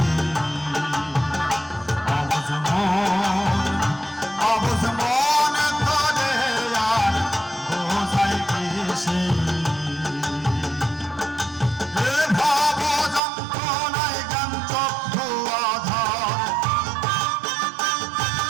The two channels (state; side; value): drops out; left; at 13.2 s